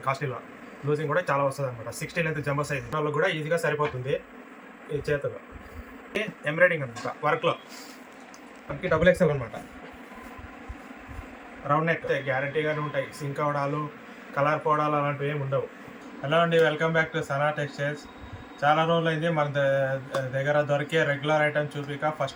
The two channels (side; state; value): both; identical; correlation 1.00